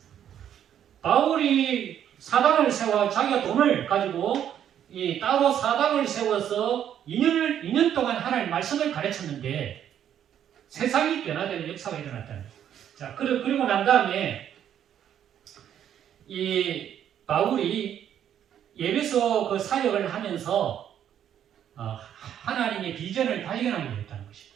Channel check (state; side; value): quieter; left; 9.9 dB